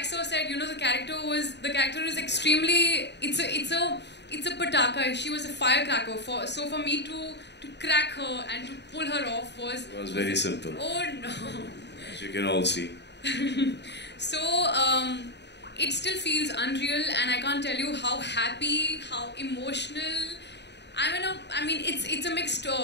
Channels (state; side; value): late; right; 0.50 ms